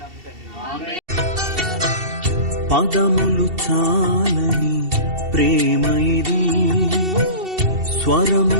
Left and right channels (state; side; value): late; left; 2.7 ms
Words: తండ్రి. పదములు చాలని ప్రేమ ఇది,